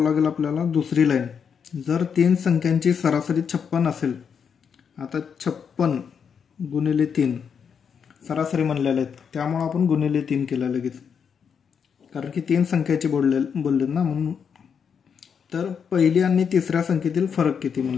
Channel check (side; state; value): right; quieter; 6.9 dB